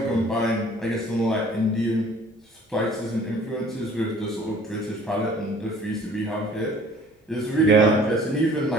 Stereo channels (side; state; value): both; normal; correlation 0.52